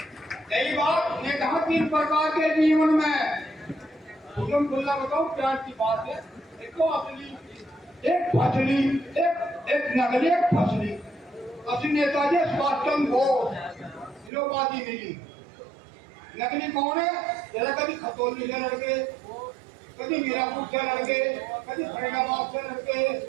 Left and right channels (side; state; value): left; drops out; at 14.3 s